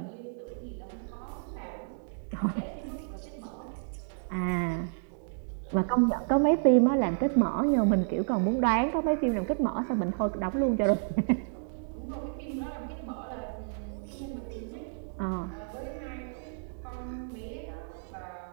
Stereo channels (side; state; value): left; silent; digital silence